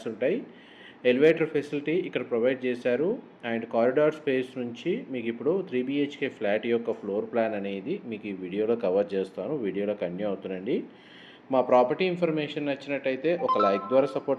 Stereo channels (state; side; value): identical; both; correlation 1.00